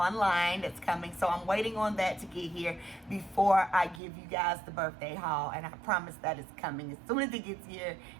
that's coming, so I'm waiting on that to get here before I give you guys the birthday haul, and I promise that it's coming. As soon as it gets here,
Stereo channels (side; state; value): left; drops out; at 4.0 s